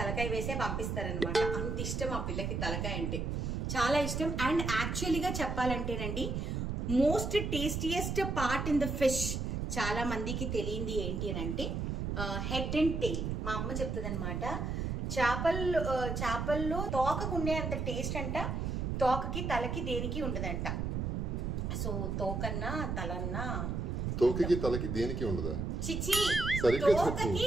వేసే పంపిస్తారనమాట. అంత ఇష్టం ఆ పిల్లకి తలకాయ అంటే, చాలా ఇష్టం. అండ్ యాక్చువల్లీగా చెప్పాలంటేనండి most tastiest part in the fish చాలా మందికి తెలియంది ఏంటి అని అంటే హెడ్ అండ్ టెయిల్. మా అమ్మ చెప్తుంది అనమాట, చేపల్లో తోకకుండే అంత టేస్ట్ అంట తోకకి తలకి దేనికి ఉండదంట. సో తోకన్నా తలన్నా, తోకకి తలకి దేనికి ఉండదా? చిచి, తోకకి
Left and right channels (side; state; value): right; noise; rumble, 2 dB below the sound